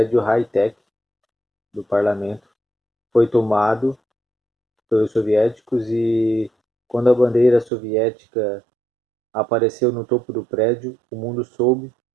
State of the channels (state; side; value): drops out; left; at 7.7 s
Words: Hightech do parlamento foi tomado pelos soviéticos, e quando a bandeira soviética apareceu no topo do prédio, o mundo soube